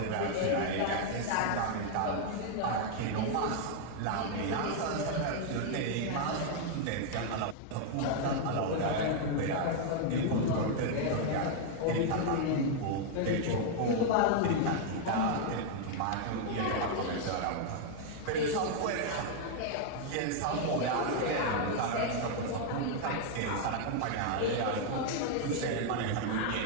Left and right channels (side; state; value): both; different; correlation 0.00